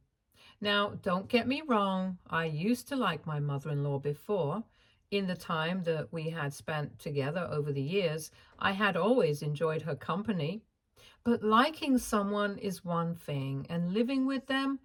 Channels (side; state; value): both; identical; correlation 1.00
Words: Now, don't get me wrong, I used to like my mother-in-law before. In the time that we had spent together over the years, I had always enjoyed her company. But liking someone is one thing, and living with them